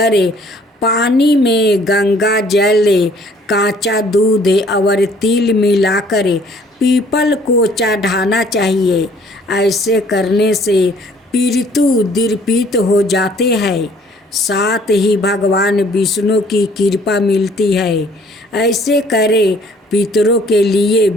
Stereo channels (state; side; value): normal; both; correlation 0.58